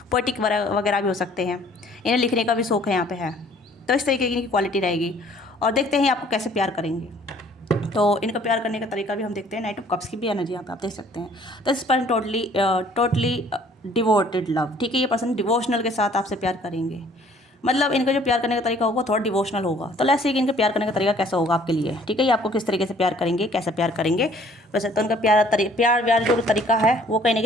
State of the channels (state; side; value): normal; both; correlation 0.57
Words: पोइटिक वगैरह भी हो सकते हैं, इन्हें लिखने का भी शौक है यहाँ पे है। तो इस तरीके की इनकी क्वालिटी रहेगी। और देखते हैं आपको कैसे प्यार करेंगे। तो इनका प्यार करने का तरीका भी हम देखते हैं। नाइट ऑफ कप्स की भी एनर्जी यहाँ पे आप देख सकते हैं। तो इस पर्सन टोटली डिवोटेड लव, ठीक है, ये पर्सन डिवोशनल के साथ आपसे प्यार करेंगे। मतलब इनका जो प्यार करने का तरीका होगा थोड़ा डिवोशनल होगा। तो लेट्स सी कि इनका प्यार करने का तरीका कैसा होगा आपके लिए, ठीक है, ये आपको किस तरीके से प्यार करेंगे, कैसे प्यार करेंगे। वैसे तो इनका प्यार जो तरीका है वो कहीं ना